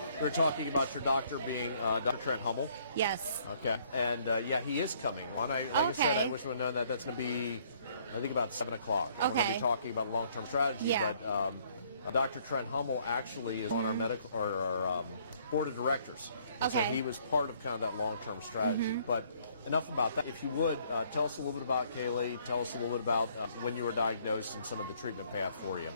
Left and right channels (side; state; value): both; inverted; correlation -0.63